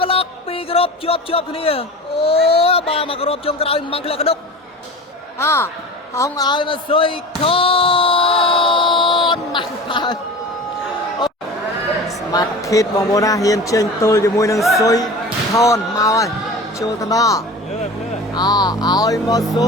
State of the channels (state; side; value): normal; both; correlation 0.35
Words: Block ពីរគ្រប់ជាប់គ្នាអូបាទមកគ្រប់ជុំក្រោយមកក្លាក់កដុកហងឲ្យមកស៊ុយខនមកបើស្មាត់ខេតបងប្អូនណាហ៊ានចេញទល់ជាមួយនឹងស៊ុយខនមកហើយចូលទៅដល់ឲ្យមកស៊